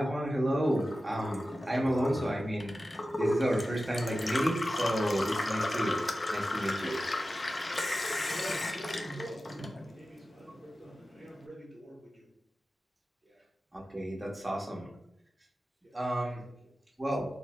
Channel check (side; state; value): both; normal; correlation 0.94